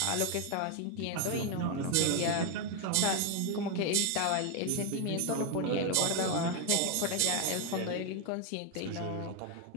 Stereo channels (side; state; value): both; different; correlation 0.01